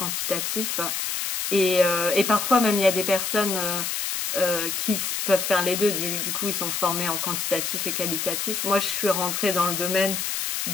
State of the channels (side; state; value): left; noise; hiss, 1 dB below the sound